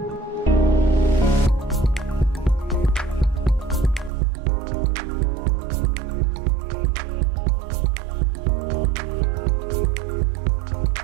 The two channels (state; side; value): drops out; left; at 4.1 s